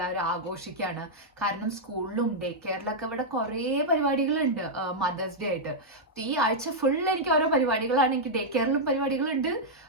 ആഘോഷിക്കുകയാണ്. കാരണം സ്കൂളിലും ഡേ കെയറിലൊക്കെ ഇവിടെ കുറേ പരിപാടികളുണ്ട് മദേഴ്സ് ഡേ ആയിട്ട്. ഈ ആഴ്ച ഫുൾ എനിക്ക് ഓരോ പരിപാടികളാണ്. എനിക്ക് ഡേ കെയറിലും പരിപാടികളുണ്ട്,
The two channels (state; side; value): normal; both; correlation -0.05